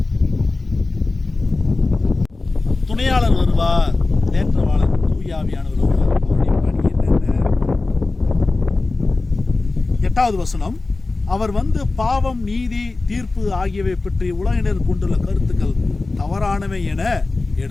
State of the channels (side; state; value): right; quieter; 3.5 dB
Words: துணையாளர் வருவார், தேற்றவாளர் தூயாவியானவர் வருவார். அவருடைய பணி என்னென்ன? 8வது வசனம், அவர் வந்து பாவம், நீதி, தீர்ப்பு ஆகியவை பற்றி உலகினர் கொண்டுள்ள கருத்துக்கள் தவறானவை என